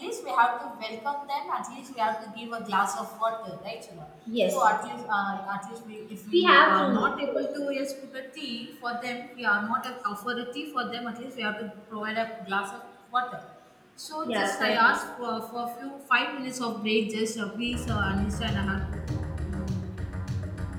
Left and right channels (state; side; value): identical; both; correlation 1.00